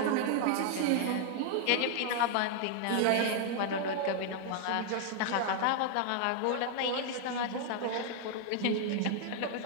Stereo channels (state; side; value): different; both; correlation 0.00